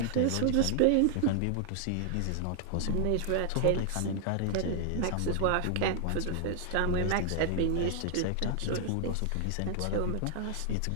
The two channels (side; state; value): both; different; correlation 0.00